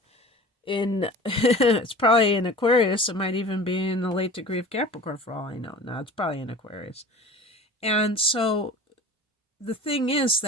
in, it's probably in Aquarius. It might even be in the late degree of Capricorn for all I know. No, it's probably in Aquarius. And so the thing is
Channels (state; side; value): normal; both; correlation 0.39